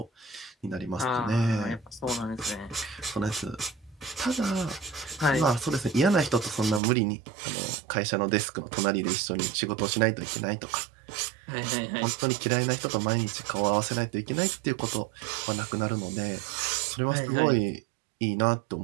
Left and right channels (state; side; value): drops out; left; at 6.8 s